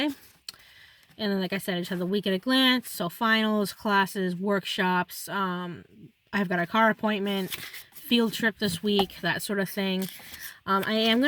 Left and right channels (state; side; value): identical; both; correlation 1.00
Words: And then, like I said, I just have the week at a glance. So finals, classes, workshops. I've got a car appointment, field trip this week, that sort of thing. I am